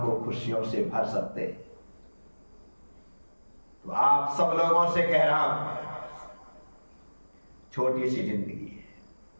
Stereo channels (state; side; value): inverted; both; correlation -1.00